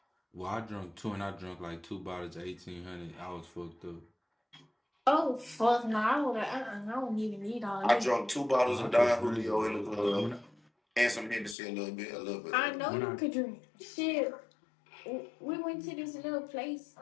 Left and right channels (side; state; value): right; drops out; at 11.6 s